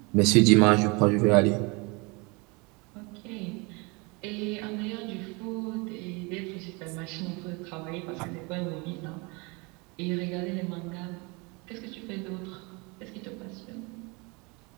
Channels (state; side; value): quieter; left; 28.3 dB